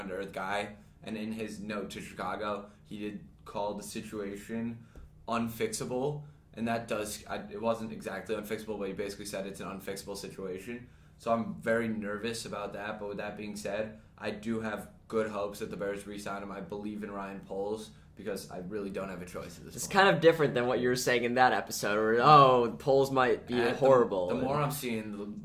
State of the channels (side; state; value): both; identical; correlation 1.00